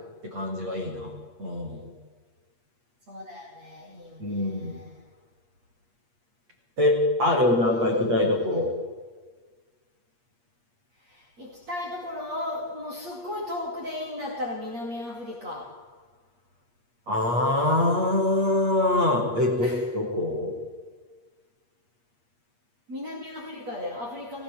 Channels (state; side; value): late; left; 8.4 ms